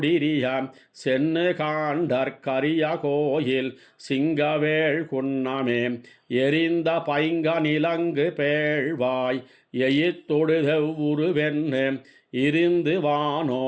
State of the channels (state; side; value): identical; both; correlation 1.00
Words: சென்னு காண்டற்கரிய கோயில் சிங்கவேள் குன்னமே எரிந்த பைங்க நிலங்கு பேழ்வாய் எயித்தொடுதெவ்வுருவென்னு இருந்து